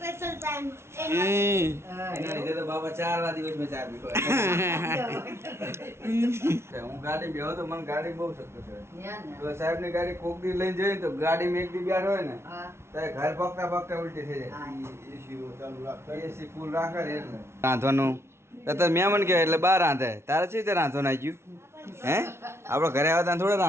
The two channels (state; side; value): late; left; 0.12 ms